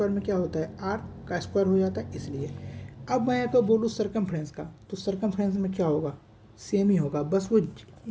क्या होता है, r का स्क्वायर हो जाता है, इसलिए। अब मैं अगर बोलूँ सर्कमफ्रेंस का, तो सर्कमफ्रेंस में क्या होगा, सेम ही होगा, बस वो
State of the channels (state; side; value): identical; both; correlation 1.00